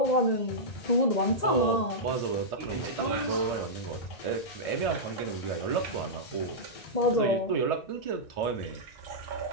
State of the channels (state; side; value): late; right; 1.8 ms